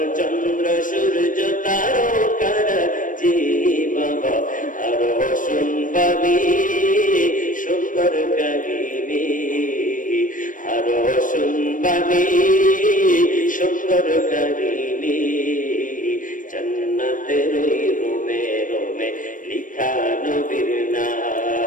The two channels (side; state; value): right; late; 0.38 ms